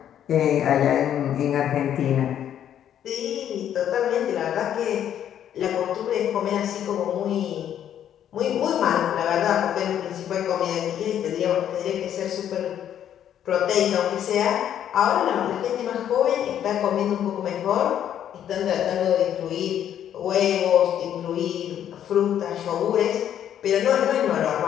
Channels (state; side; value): quieter; right; 10.1 dB